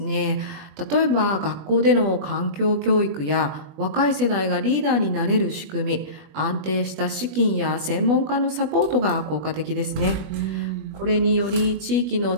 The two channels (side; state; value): left; late; 20 ms